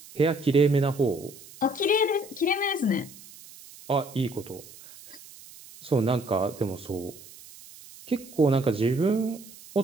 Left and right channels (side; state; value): right; noise; hiss, 19 dB below the sound